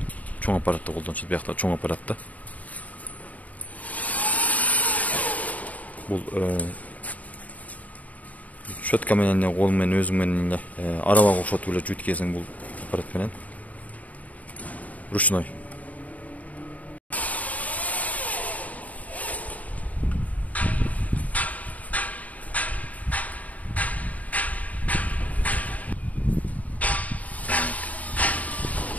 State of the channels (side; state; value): right; late; 0.072 ms